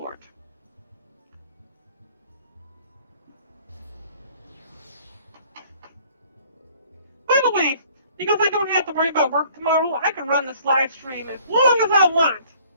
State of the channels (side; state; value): both; inverted; correlation -0.56